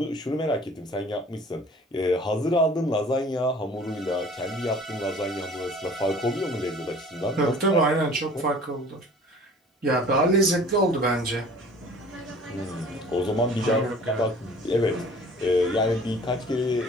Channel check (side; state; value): both; normal; correlation 0.48